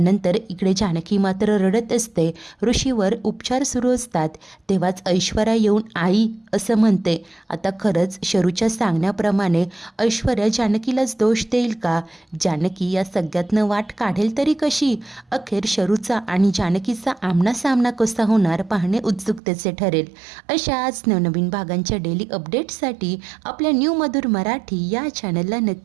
इकडे जानकी मात्र रडत असते. ऋषीवर उपचार सुरू असतात. तेव्हाच ऐश्वर्या येऊन आई असं म्हणते. आता खरंच शरूच्या सांगण्याप्रमाणे ऐश्वर्या जानकीलाच दोष देईल का? जानकी या सगळ्यातनं वाट काढेल तरी कशी? अखेर शरूचा आणि जानकीचा आमनासामना कसा होणार पाहणे उत्सुकतेचे ठरेल. अशाच नवनवीन भागांच्या डेली अपडेट्ससाठी आपल्या न्यू मधुर मराठी या चॅनलला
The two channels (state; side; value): drops out; left; at 19.4 s